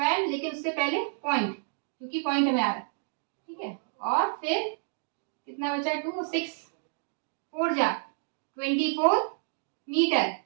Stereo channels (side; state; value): left; silent; digital silence